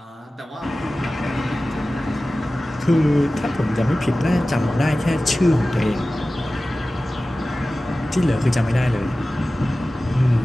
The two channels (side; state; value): both; normal; correlation 0.96